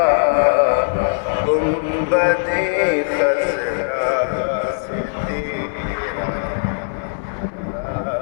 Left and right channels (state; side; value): silent; right; digital silence